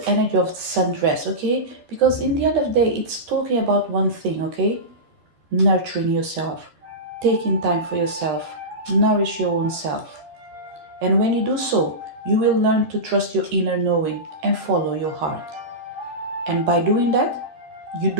energy of the sundress, okay? Because in the end of the day, it's talking about one thing, okay? Nurturing yourself, taking time for yourself, nourish your own self. And when you do so, you will learn to trust your inner knowing and follow your heart. And by doing that, you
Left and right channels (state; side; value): late; left; 13 ms